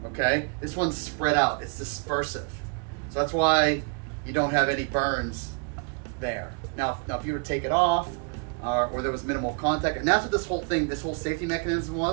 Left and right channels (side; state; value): left; quieter; 35.8 dB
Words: Okay, this one's spread out, it's dispersive. So that's why you don't have any burns there. Now if you were to take it off, or there was minimal contact, and that's what this whole thing, this whole safety mechanism